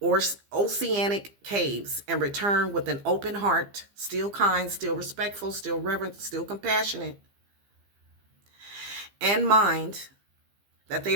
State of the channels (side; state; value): left; late; 15 ms